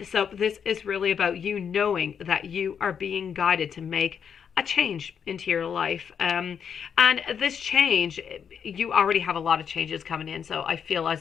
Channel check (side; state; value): right; quieter; 7.4 dB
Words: So this is really about you knowing that you are being guided to make a change into your life. And this change, you already have a lot of changes coming in. So I feel as